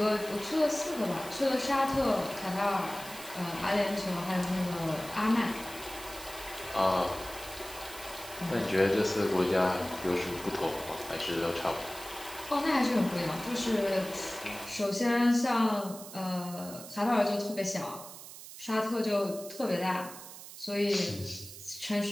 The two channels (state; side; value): noise; right; hiss, 14 dB below the sound